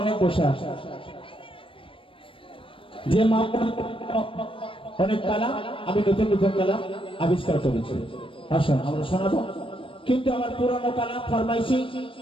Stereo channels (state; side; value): late; right; 0.25 ms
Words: অনেক বসে আছে, যে মা অনেক কালাম আমি নতুন নতুন কালাম আবিষ্কার করেছি। আসুন আমরা শোনাবো, কিন্তু আমার পুরনো কালাম ফরমাইশি